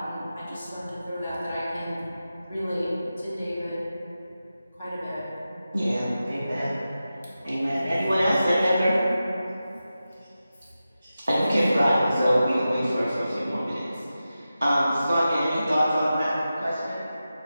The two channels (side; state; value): both; inverted; correlation -0.93